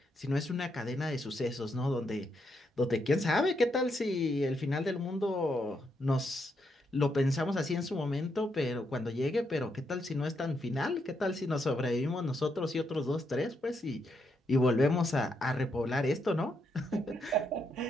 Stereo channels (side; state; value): both; normal; correlation 0.79